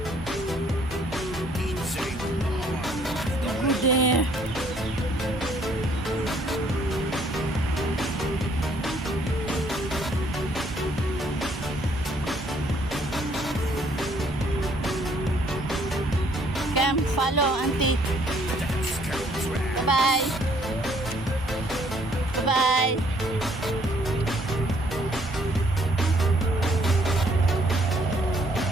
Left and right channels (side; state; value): both; normal; correlation 0.64